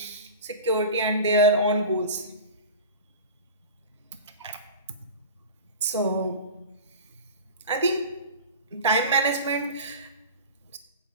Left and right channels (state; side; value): inverted; both; correlation -0.34